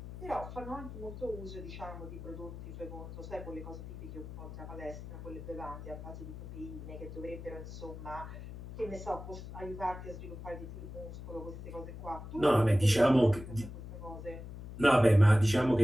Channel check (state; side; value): noise; left; hum, 11 dB below the sound